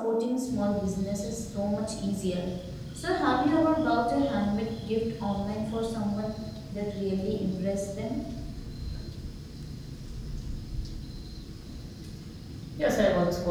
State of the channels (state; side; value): identical; both; correlation 1.00